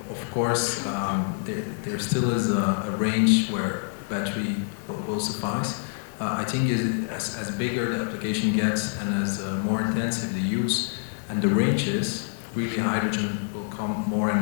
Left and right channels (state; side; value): silent; right; digital silence